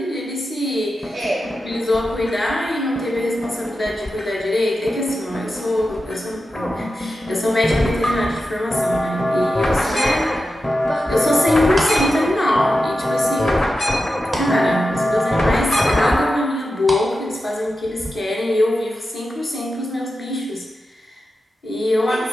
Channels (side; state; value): both; normal; correlation 0.91